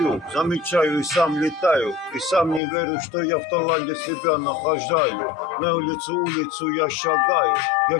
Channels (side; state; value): right; drops out; at 2.6 s